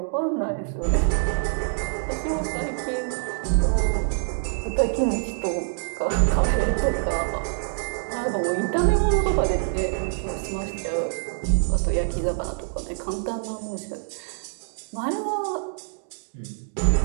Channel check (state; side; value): silent; left; digital silence